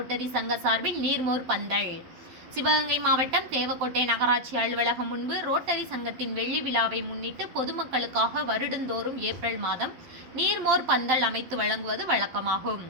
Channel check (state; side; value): late; left; 12 ms